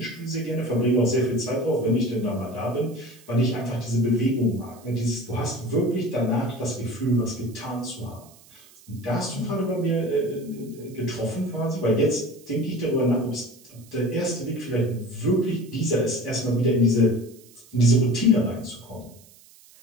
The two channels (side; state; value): right; noise; hiss, 25 dB below the sound